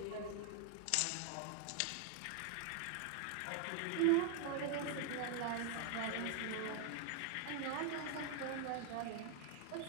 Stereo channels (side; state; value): both; different; correlation 0.00